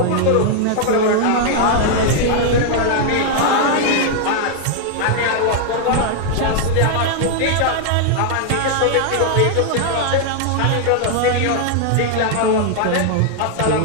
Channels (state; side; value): different; both; correlation 0.00